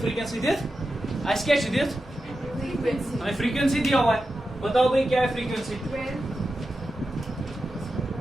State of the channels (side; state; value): both; normal; correlation 0.91